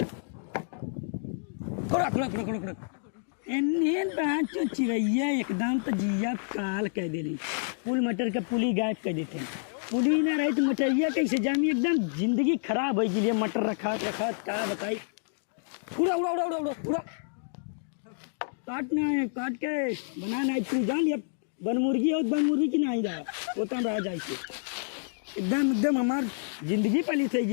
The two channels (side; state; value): right; silent; digital silence